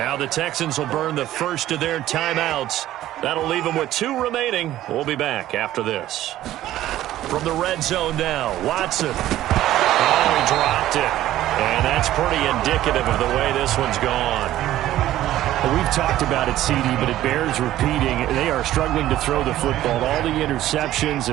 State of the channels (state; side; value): quieter; left; 13.8 dB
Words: the Texans will burn the first of their timeouts. That'll leave them with 2 remaining. We'll be back after this. From the red zone now, Watson. Oh, he dropped it. And that's pretty indicative of the way this one's gone. Well, we've talked about it, CD, but it bears repeating. They are struggling to throw the football. All the interceptions